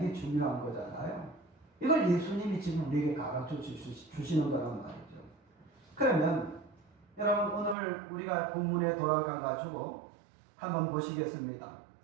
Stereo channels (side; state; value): left; drops out; at 7.8 s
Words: 중요한 거잖아요. 이걸 예수님이 지금 우리에게 가르쳐 주시는 거란 말이죠. 그러면 여러분 오늘 우리가 본문에 돌아가 가지고 한번 보시겠습니다.